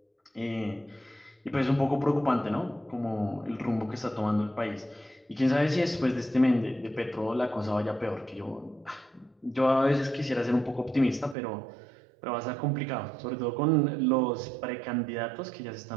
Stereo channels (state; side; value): drops out; left; at 11.4 s